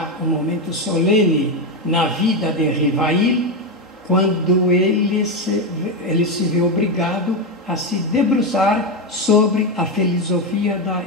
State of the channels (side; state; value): both; normal; correlation 0.10